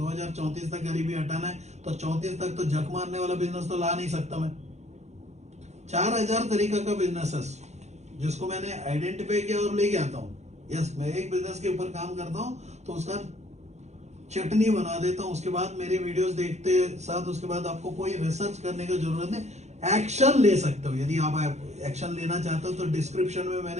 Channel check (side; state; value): left; late; 0.33 ms